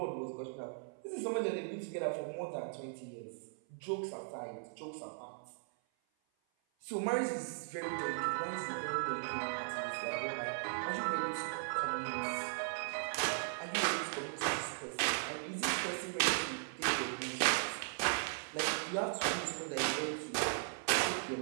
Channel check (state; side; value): silent; left; 52 dB below the other